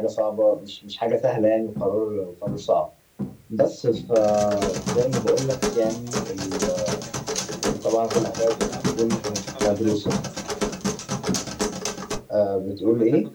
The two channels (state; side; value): identical; both; correlation 1.00